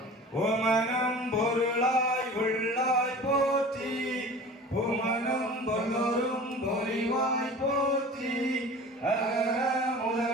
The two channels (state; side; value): normal; both; correlation 0.40